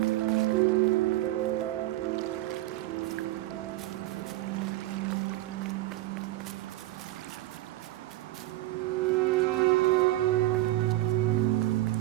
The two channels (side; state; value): left; quieter; 16.4 dB